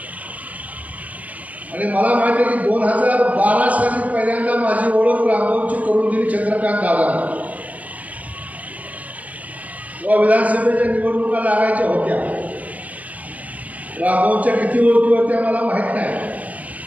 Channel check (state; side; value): late; left; 0.072 ms